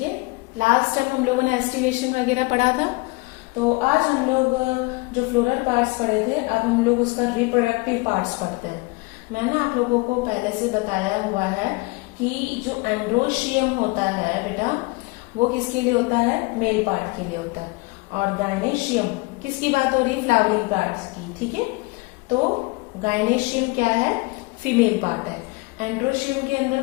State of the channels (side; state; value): right; quieter; 25.6 dB